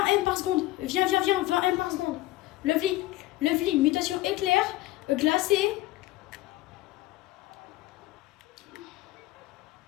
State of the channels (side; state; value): right; quieter; 17.1 dB